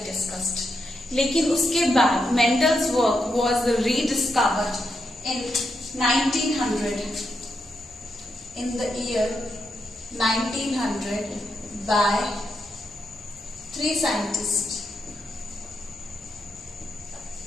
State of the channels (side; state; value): both; normal; correlation 0.83